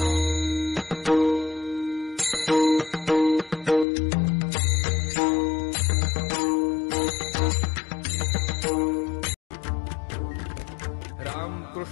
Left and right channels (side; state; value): right; drops out; at 3.9 s